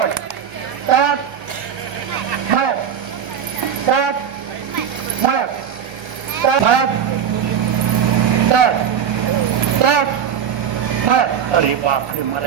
तर मळ्यात तर मळ्यात तर मळ्यात तर तर मळ्यात. अरे बापरे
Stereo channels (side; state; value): left; quieter; 8.3 dB